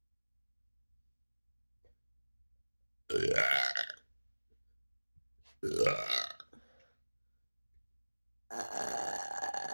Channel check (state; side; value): inverted; both; correlation -1.00